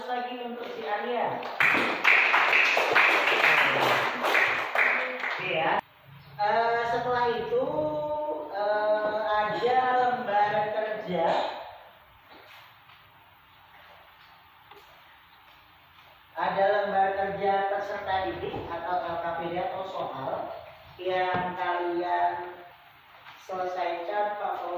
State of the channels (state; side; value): identical; both; correlation 1.00